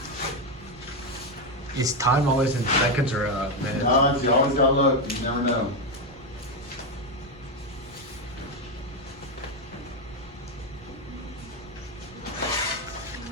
Is time always in seconds or minutes? No, you always gotta look, you never know.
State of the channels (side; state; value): both; normal; correlation 0.07